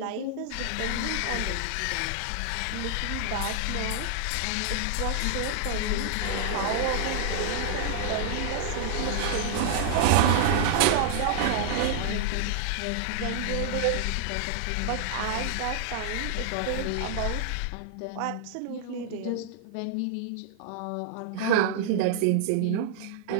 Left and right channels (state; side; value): different; both; correlation -0.01